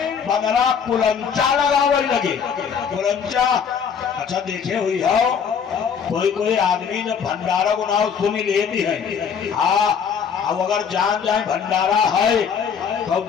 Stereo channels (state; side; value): quieter; right; 6.9 dB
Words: बदला कुलंचा लगावे लगे। कुलंचा अच्छा देखे हुई हो, कोई आदमी जब भंडारा को नाम सुनी लेती है। अब अगर जान जाए भंडारा है तो